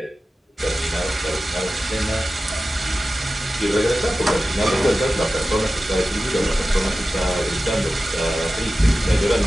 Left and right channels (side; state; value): both; normal; correlation 0.94